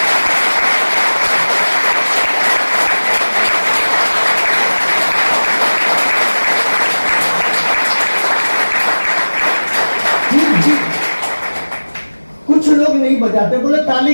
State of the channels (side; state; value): both; inverted; correlation -1.00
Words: कुछ लोग नहीं बजाते, बोले ताली